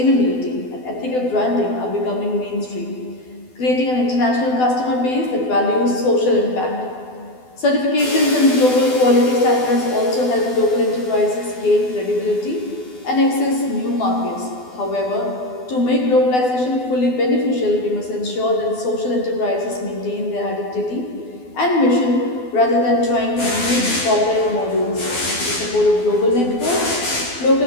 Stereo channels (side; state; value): right; late; 12 ms